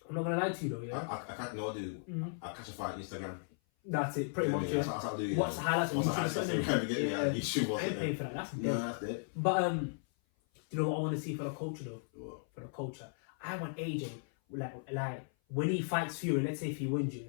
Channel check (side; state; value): right; silent; 54 dB below the other